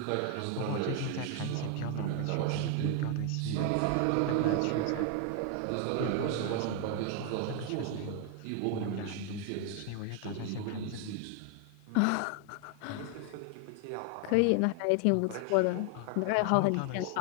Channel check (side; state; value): both; different; correlation 0.00